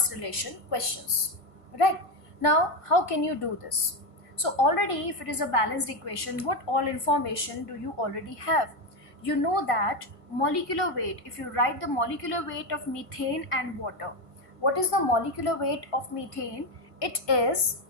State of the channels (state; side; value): late; right; 1.5 ms